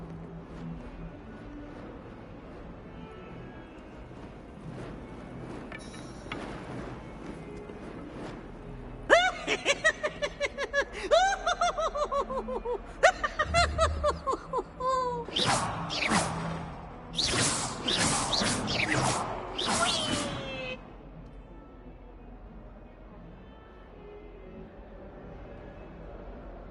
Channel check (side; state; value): both; identical; correlation 1.00